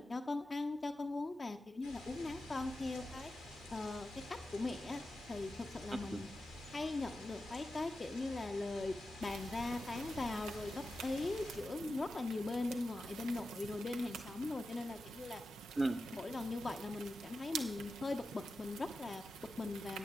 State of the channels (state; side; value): normal; both; correlation 0.91